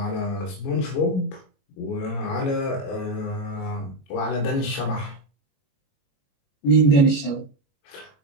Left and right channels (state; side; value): late; right; 21 ms